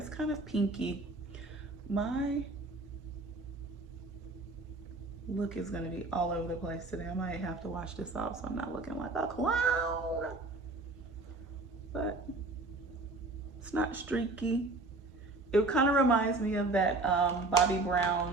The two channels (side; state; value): left; quieter; 3.2 dB